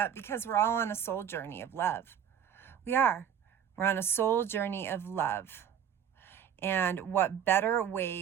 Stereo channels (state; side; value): quieter; left; 8.8 dB